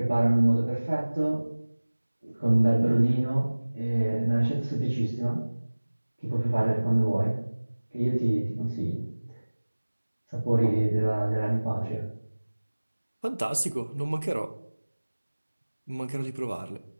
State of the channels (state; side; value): inverted; both; correlation -1.00